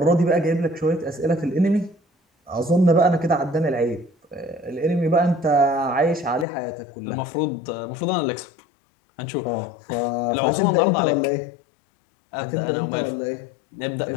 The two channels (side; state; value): right; drops out; at 6.5 s